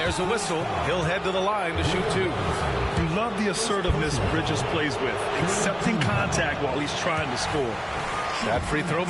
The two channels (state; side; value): identical; both; correlation 1.00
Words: a whistle. He'll head to the line to shoot 2. You love the assertiveness Bridges plays with, accepting contact while he's trying to score. That free throw